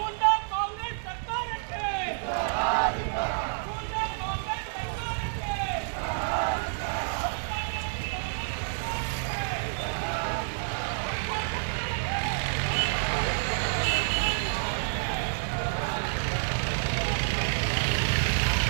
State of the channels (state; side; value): silent; left; digital silence